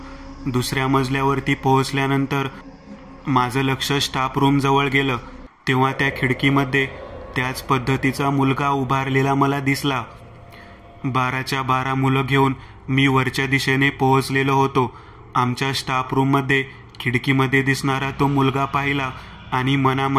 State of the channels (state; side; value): identical; both; correlation 1.00